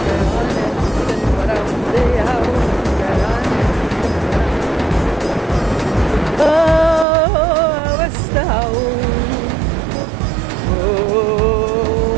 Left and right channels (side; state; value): left; drops out; at 7.1 s